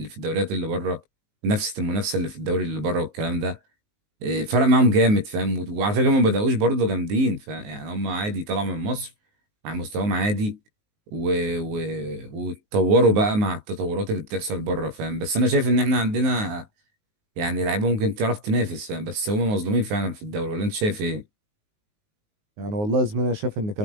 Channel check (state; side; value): late; left; 19 ms